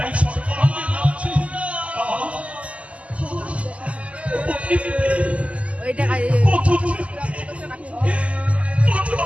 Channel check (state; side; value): late; left; 0.063 ms